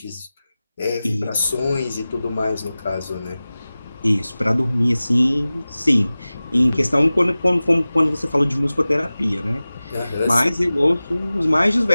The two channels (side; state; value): both; inverted; correlation -0.97